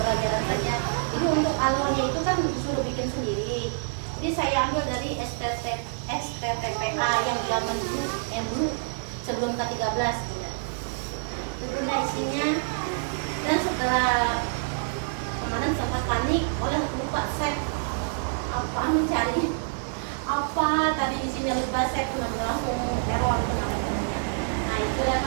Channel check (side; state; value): left; silent; 60 dB below the other